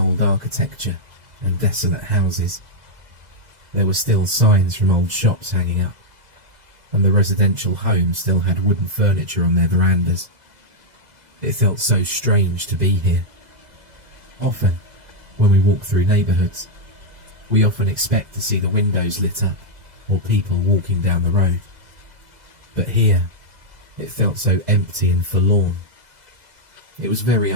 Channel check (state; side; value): late; left; 2.0 ms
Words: architecture and desolate houses. There were still signs from old shops hanging up, and the residential homes still had wooden furniture on their verandas. It felt so strange to be here. Often, when we walk through neighbourhoods, we often expect to see the windows lit up or people walking down the road. But here, it felt so empty and forlorn. It was very